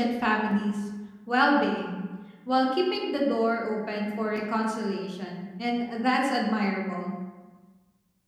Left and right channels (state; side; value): identical; both; correlation 1.00